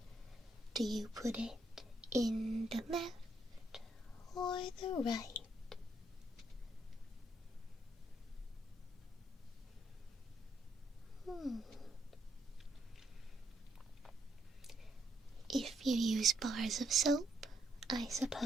Do you put it in the left or the right? If you use bars of soap, I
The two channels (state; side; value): normal; both; correlation 0.76